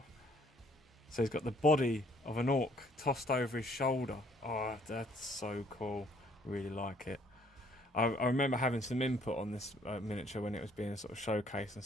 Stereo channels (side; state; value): both; normal; correlation 0.62